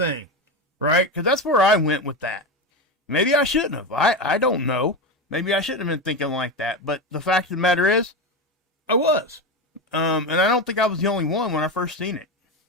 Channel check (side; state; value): both; normal; correlation 0.17